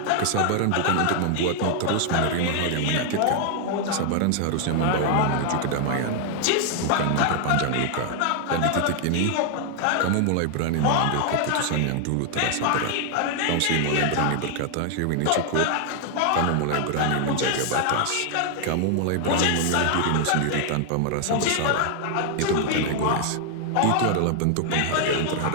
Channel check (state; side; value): different; both; correlation 0.00